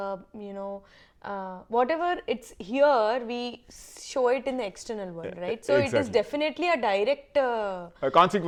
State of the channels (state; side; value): identical; both; correlation 1.00